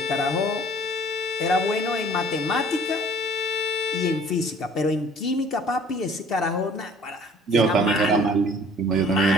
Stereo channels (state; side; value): normal; both; correlation 0.53